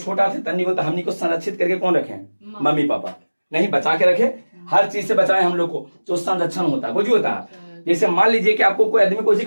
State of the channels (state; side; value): inverted; both; correlation -1.00